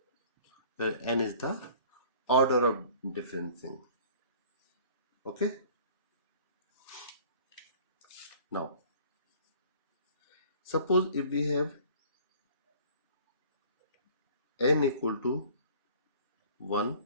N is the order of differencing. Okay, now suppose if we have n equal to 1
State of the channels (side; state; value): both; inverted; correlation -0.50